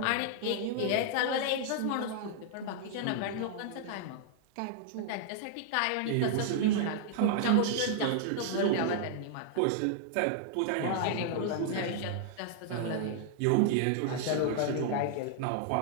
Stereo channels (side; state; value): both; different; correlation -0.01